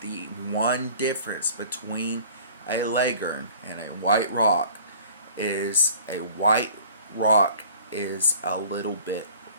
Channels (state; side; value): inverted; both; correlation -0.48